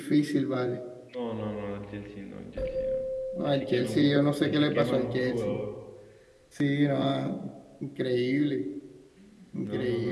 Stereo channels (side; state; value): both; identical; correlation 1.00